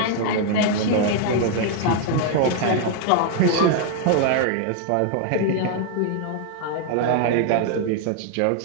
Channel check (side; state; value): both; different; correlation 0.00